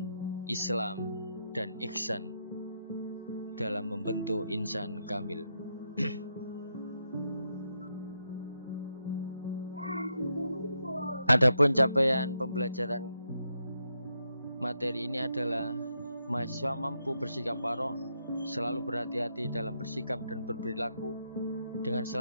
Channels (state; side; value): inverted; both; correlation -0.81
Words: Islam, dan ihsan dalam membentuk insan kamil. Adapun capaian pembelajaran materi ini adalah mahasiswa mampu bersikap warok, selalu berhati-hati dalam bersikap dan berperilaku dengan